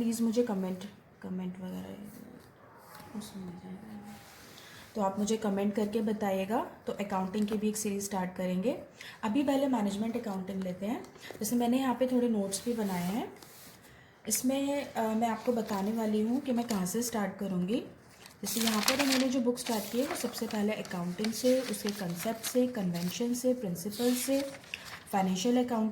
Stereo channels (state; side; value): identical; both; correlation 1.00